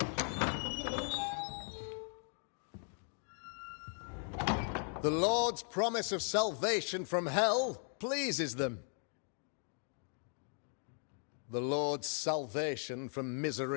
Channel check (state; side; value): silent; right; 52 dB below the other